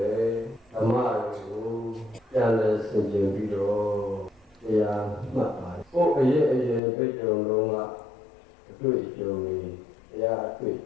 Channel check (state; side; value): drops out; right; at 6.8 s